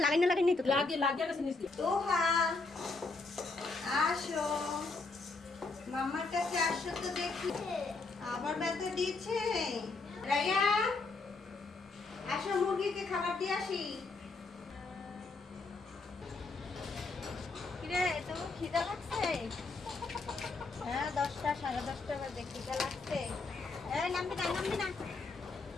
নাই তো। লাগিয়ে গেছে নিস দিয়ে তোহা আসো, মামার কাছে আসো তো দেখি। আবার ব্যথা দিচ্ছে। রাইয়া আসো, মুরগিকে খাবার দিয়ে আসি। কিরে তো খিদা লাগছে? হ্যাঁ 10টা 10:30 বাজে, খিদা লাগছে। এই নামবি না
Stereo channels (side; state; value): right; quieter; 3.8 dB